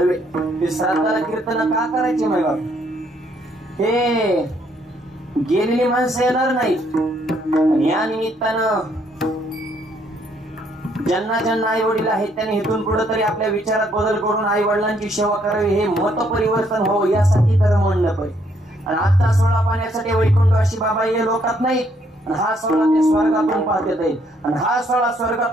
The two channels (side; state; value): both; normal; correlation 0.69